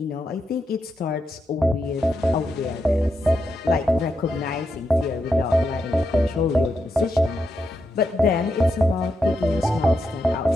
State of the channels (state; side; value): normal; both; correlation 0.84